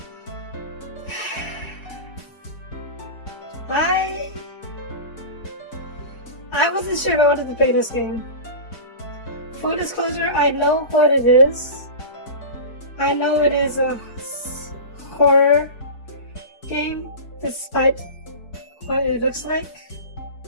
I wasn't sure if I wanted to play this game. Full disclosure, I know what it is. I know it is a horror game despite what it looks like.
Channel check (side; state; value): right; late; 4.7 ms